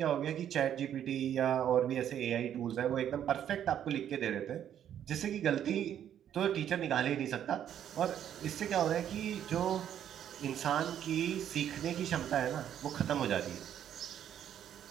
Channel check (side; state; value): left; quieter; 10.0 dB